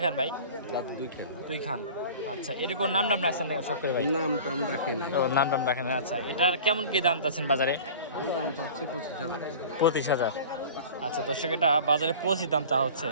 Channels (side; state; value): both; inverted; correlation -0.40